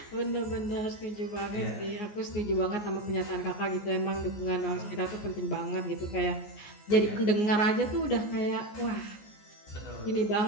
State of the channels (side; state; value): right; late; 14 ms